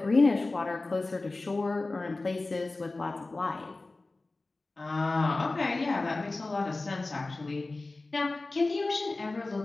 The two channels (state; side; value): quieter; right; 3.2 dB